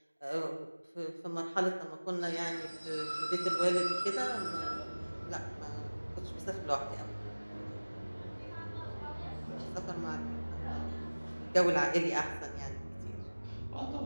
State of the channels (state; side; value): inverted; both; correlation -1.00